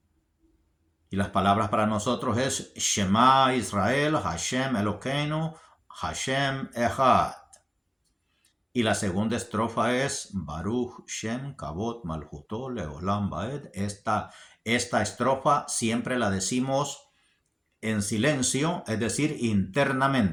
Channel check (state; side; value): identical; both; correlation 1.00